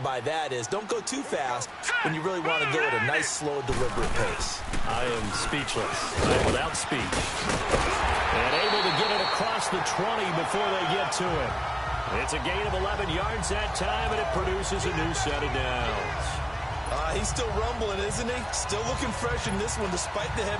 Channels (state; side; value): identical; both; correlation 1.00